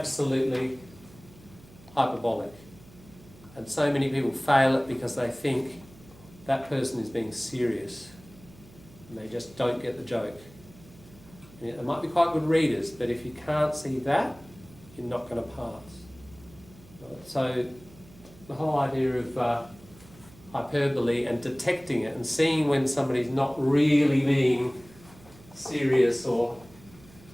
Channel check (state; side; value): noise; right; hum, 23 dB below the sound